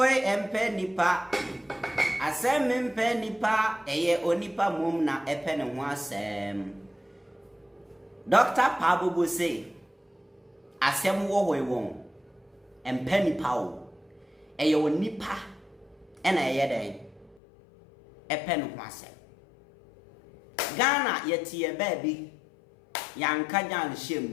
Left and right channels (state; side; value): drops out; right; at 17.4 s